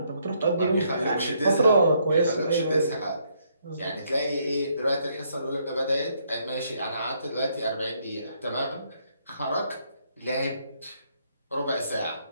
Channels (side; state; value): both; inverted; correlation -0.71